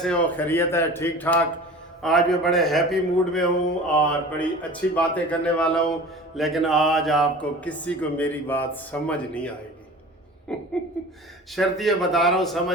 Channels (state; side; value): normal; both; correlation 0.39